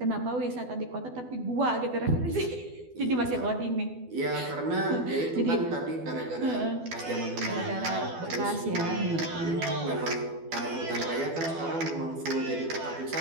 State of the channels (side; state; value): left; late; 12 ms